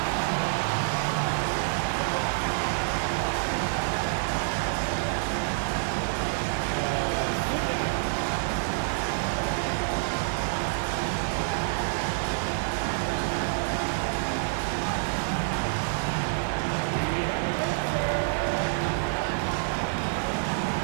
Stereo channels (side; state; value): left; silent; 60 dB below the other